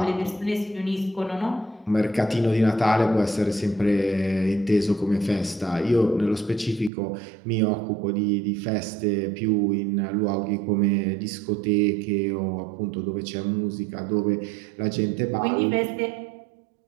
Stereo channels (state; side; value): drops out; left; at 6.9 s